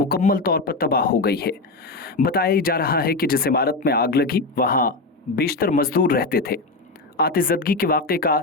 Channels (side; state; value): right; quieter; 3.3 dB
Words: तौर पर तबाह हो गई है। बताया जा रहा है कि जिस इमारत में आग लगी वहां बेशतर मजदूर रहते थे। आतिशबाजी के वाकये का